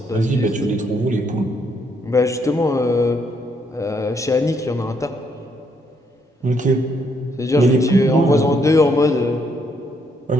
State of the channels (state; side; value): normal; both; correlation 0.73